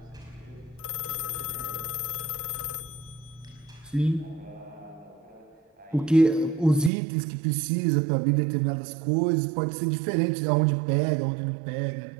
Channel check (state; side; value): drops out; left; at 6.9 s